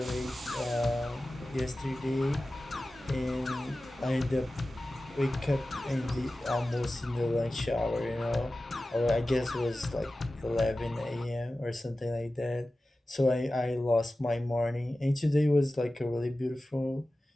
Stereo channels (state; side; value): normal; both; correlation 0.95